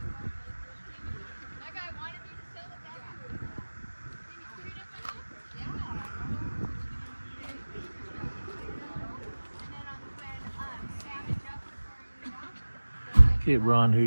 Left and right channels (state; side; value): inverted; both; correlation -1.00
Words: Okay, Ron, here